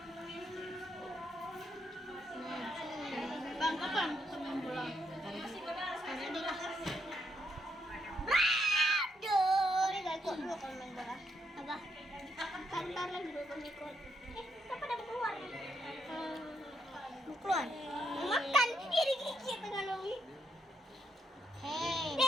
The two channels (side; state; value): both; normal; correlation 0.77